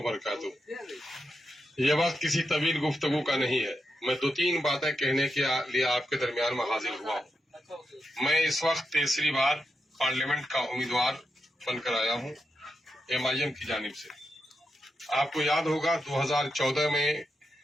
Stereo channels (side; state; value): both; normal; correlation 0.86